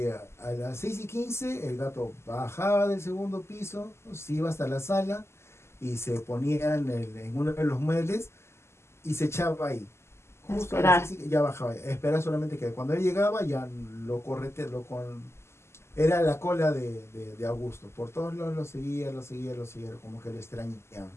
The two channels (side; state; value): right; late; 0.13 ms